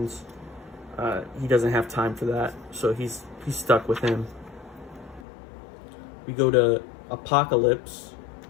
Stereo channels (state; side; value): drops out; right; at 5.2 s